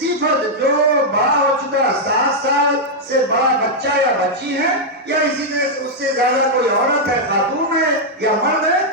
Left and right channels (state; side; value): normal; both; correlation -0.04